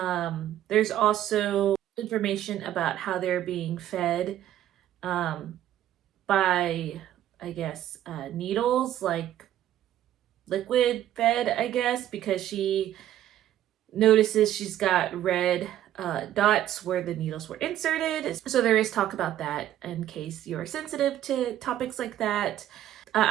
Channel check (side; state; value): left; quieter; 12.2 dB